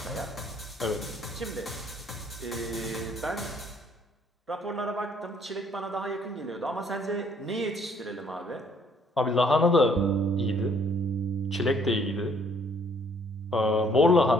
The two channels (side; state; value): both; normal; correlation 0.63